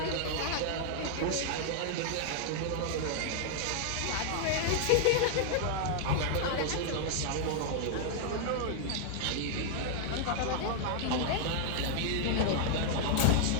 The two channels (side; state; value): both; different; correlation -0.01